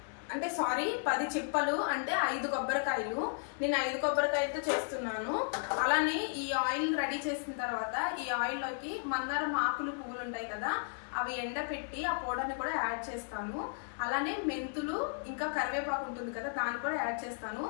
అంటే సారీ 10 చిప్పలు, అంటే 5 కొబ్బరికాయలు. నేను 5 కొబ్బరికాయలతో చేస్తున్నాను. అలానే ఈ ఆయిల్ రెడీ చేసిన తర్వాత ఈ ఆయిల్ లోకి మందారం ఆకులు పువ్వులు ఉంటాయి కదా, అవి ఎండపెట్టి ఆ పౌడర్ని కూడా యాడ్ చేస్తాను. అలానే మెంతులు ఇంకా కరివేపాకు ఉంటుంది కదా, దాన్ని కూడా యాడ్ చేస్తాను.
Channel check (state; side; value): silent; right; digital silence